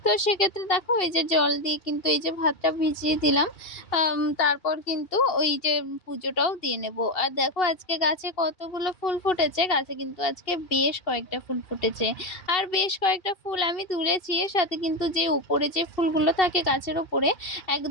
তো সেক্ষেত্রে দেখো এই যে জল দিয়ে কিন্তু এই যে ভাতটা ভিজিয়ে দিলাম। তারপর কিন্তু ওই যে পুজোটাও দিয়ে নেব। আর দেখো আজকে গাছে কতগুলো ফুল ফুটেছে। গাছে কিন্তু আজকে বেশ কয়েকটা ফুল ফুটেছে। আর বেশ কয়েকটা ফুল আমি তুলেছি। এর সাথে কিন্তু যে উপরে যে ফুলগুলো থাকে গাছের ওপরে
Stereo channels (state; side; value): late; right; 2.7 ms